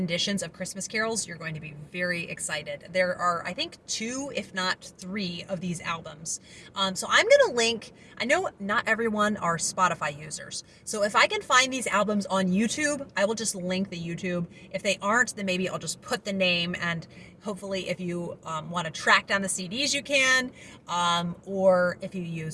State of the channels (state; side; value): identical; both; correlation 1.00